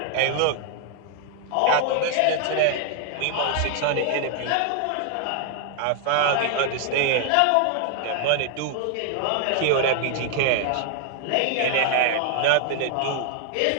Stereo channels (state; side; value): different; both; correlation 0.00